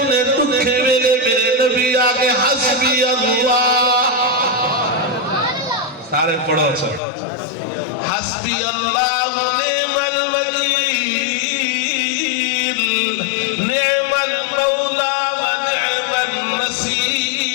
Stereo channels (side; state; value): right; drops out; at 7.0 s